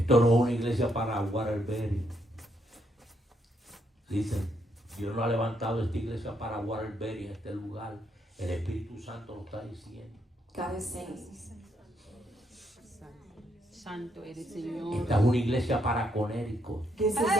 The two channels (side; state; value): both; normal; correlation 0.76